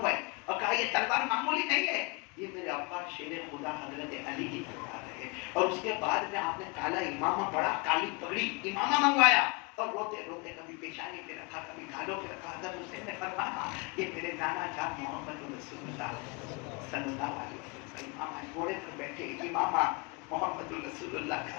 اور کہا یہ تلوار معمولی نہیں ہے، یہ میرے ابا شیر خدا حضرت علی کی تلوار ہے۔ اور اس کے بعد میں آپ نے کالا امامہ، بڑا کالی پگڑی امامہ منگوایا اور روتے روتے کبھی پیشانی پہ رکھا، کبھی گالوں پہ رکھا۔ حضرت حسین نے فرمایا یہ میرے نانا جان محمد رسول اللہ صلی اللہ علیہ وسلم امامہ گھوڑے پر بیٹھے، امامہ محمد رسول اللہ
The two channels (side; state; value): right; quieter; 29.3 dB